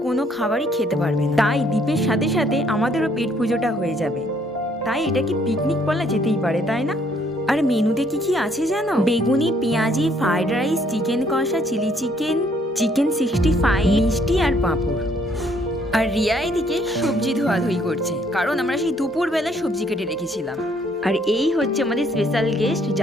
কোনো খাবারই খেতে পারবে না। তাই দীপের সাথে সাথে আমাদেরও পেট পুজোটা হয়ে যাবে। তাই এটা কি পিকনিক বলা যেতেই পারে, তাই না? আর মেনুতে কি কি আছে জানো? বেগুনি, পেঁয়াজি, ফ্রাইড রাইস, চিকেন কষা, চিলি চিকেন, চিকেন 65, মিষ্টি আর পাঁপড়। আর রিয়া এদিকে সবজি ধোয়াধুয়ি করছে, কারণ আমরা সেই দুপুরবেলা সবজি কেটে রেখেছিলাম। আর এই হচ্ছে আমাদের স্পেশাল গেস্ট,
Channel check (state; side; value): normal; both; correlation 0.66